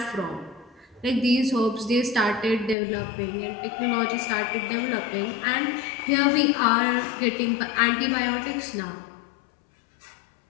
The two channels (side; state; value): right; drops out; at 2.8 s